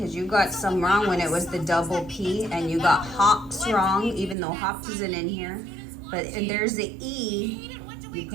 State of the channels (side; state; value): left; drops out; at 4.4 s